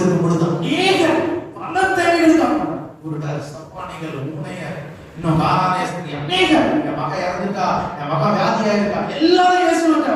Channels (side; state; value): both; identical; correlation 1.00